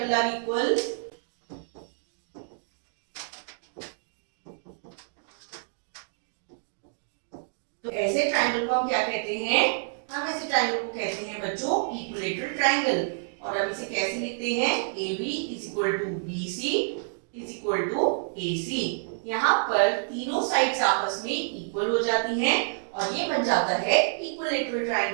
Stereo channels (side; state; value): left; silent; digital silence